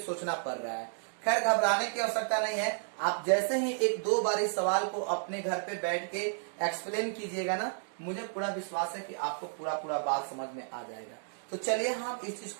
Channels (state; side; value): silent; left; digital silence